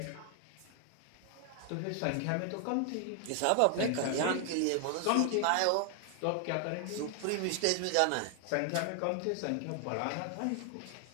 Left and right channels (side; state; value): both; different; correlation 0.00